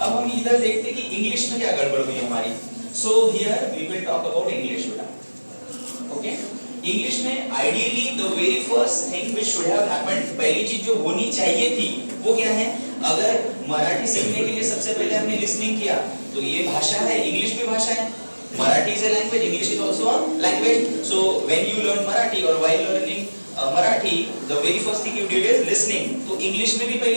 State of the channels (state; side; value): inverted; both; correlation -1.00